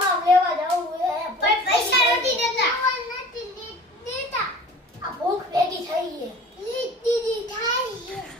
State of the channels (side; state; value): both; normal; correlation 0.43